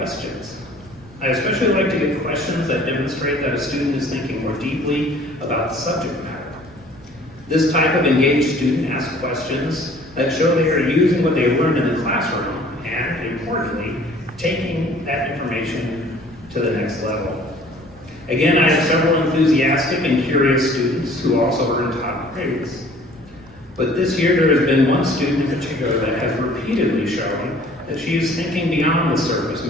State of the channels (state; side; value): noise; left; rumble, 25 dB below the sound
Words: I especially like to get questions that demonstrate that a student is thinking more deeply about the subject matter. This type of engaged student asks questions that show they are using what they learned in the classroom and, importantly, taking that information to the next level. Again, I have several enthusiastic and curious students who also earn top grades. But this year there has been one student in particular that has repeatedly shown that she is thinking beyond the surface